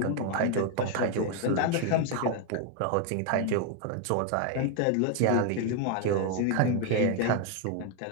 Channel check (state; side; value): different; both; correlation 0.01